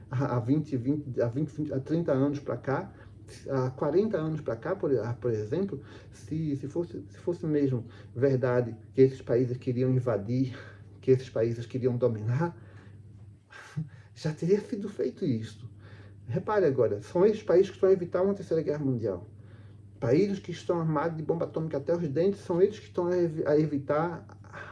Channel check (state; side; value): identical; both; correlation 1.00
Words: há 30 anos para cá, há 40 anos para cá, por exemplo, se fosse mesmo verdade que esses países queriam invadir, que esses países queriam dominar, já teria sido feito isso. Repare agora, são esses países que estão a evitar uma terceira guerra mundial. Países que estão armados de bomba atômica até os dentes são eles que estão a evitar